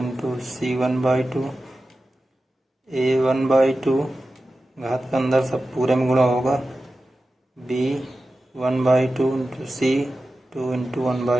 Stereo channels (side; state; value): both; normal; correlation 0.93